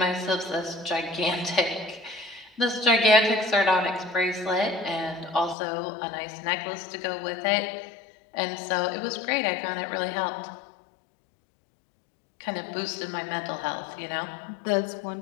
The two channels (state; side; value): drops out; right; at 5.6 s